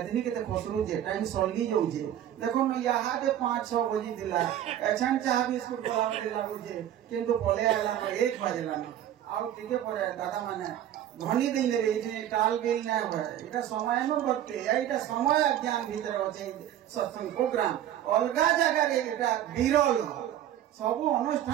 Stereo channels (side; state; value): left; quieter; 11.5 dB